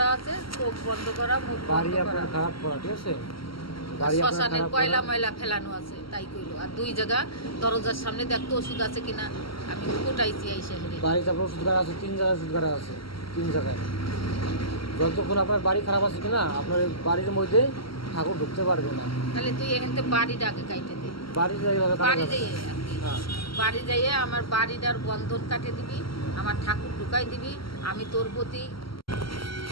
আছে, চোখ বন্ধ করা, মুখ বাড়ি বন্ধ করা, আপনার খারাপ করা, ঠিক আছে, বাড়ি আপনার শ্মশানের খারাপ কয়লা করা। ময়লা ফেলানো আছে, তাই কইলো। আর 2 জায়গা দরজার সামনে দেখতো ওষুধ আছে কিনা, আমি কোটাইছি এই শহরে। বাড়িতে আপনার ওষুধগার আছে, 3 জায়গায় ওষুধগার আছে, 3 জায়গায়। যতক্ষণ আপনার বাড়ি খারাপ আছে কিনা আপনার বাড়ির মধ্যে ঠাকুর ঢুকতে পারবে না। তাহলে তুই এখানে বাড়িটা আগে কাইটে দে, বাড়ি এইভাবে কাটা বাড়ি যাবে যাইয়ে না। আর কি। হ্যাঁ, বাড়ি যাইয়ে আমার বাড়িটার বন্ধন কাটে দিবি, আমার ঠাকুর ঢুকাই দিবি। আমি তোর প্রতি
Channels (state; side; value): late; right; 0.74 ms